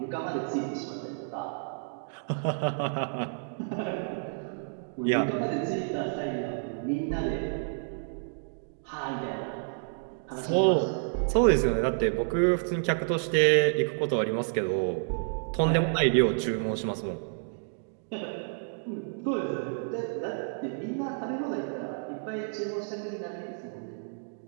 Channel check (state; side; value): silent; left; digital silence